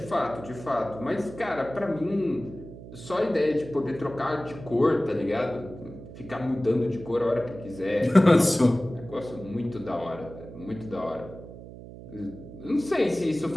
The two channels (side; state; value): right; noise; hum, 14 dB below the sound